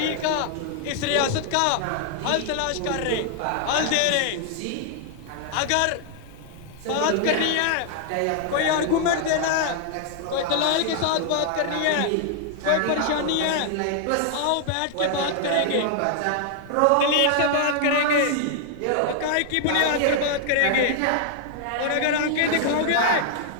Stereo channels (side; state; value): both; different; correlation 0.00